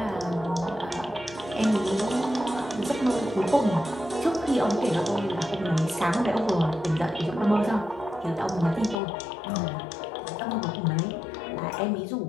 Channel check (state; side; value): drops out; right; at 9.0 s